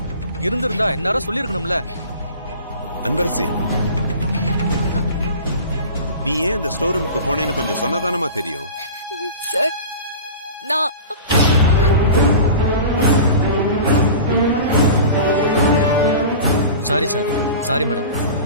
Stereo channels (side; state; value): both; inverted; correlation -0.36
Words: இருந்திருந்தா எல்லாரும் சொல்லிருக்கணும்ல. அன்பரசி, நீ ஏன் அந்த ஸ்டோர் ரூமுக்கு போனேன்னு கொஞ்சம் சொன்னதானமா தெரியும். சார், நான் சாரி சார். Sorry madam.